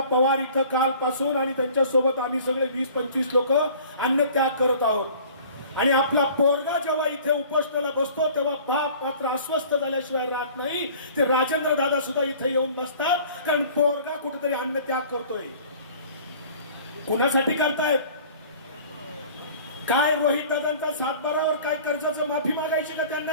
पवार इथं कालपासून आणि त्यांच्या सोबत आम्ही सगळे 20-25 लोक अन्नत्याग करत आहोत। आणि आपला पोरगा जेव्हा इथे उपोषणाला बसतो तेव्हा बाप मात्र अस्वस्थ झाल्याशिवाय राहत नाही। ते राजेंद्र दादा सुद्धा इथे येऊन बसतात, कारण पोरगा कुठेतरी अन्नत्याग करतोय। कोणासाठी करतायत? काय रोहित दादांचा सातबारावर काय कर्जाचं माफी मागायची का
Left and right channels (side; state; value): both; inverted; correlation -0.48